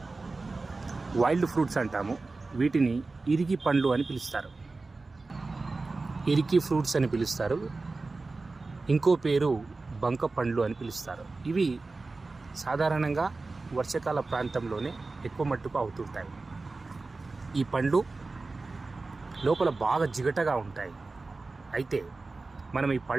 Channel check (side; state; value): left; quieter; 3.6 dB